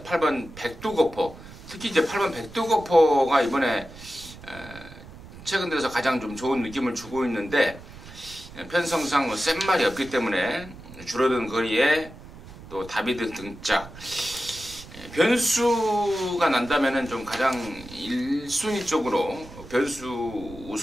백두거포, 특히 이제 8번 백두거포가 이번에 최근 들어서 가장 좀 좋은 느낌을 주고 있는데, 편성상 센 말이 없기 때문에 줄어든 거리에 또 다비드 등짝, 변수가 난다면은 좀 가장 1순위 쪽으로 변수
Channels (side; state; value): right; noise; rumble, 17 dB below the sound